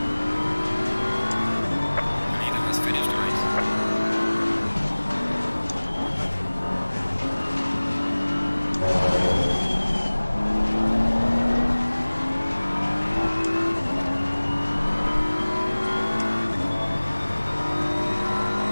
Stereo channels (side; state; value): both; inverted; correlation -1.00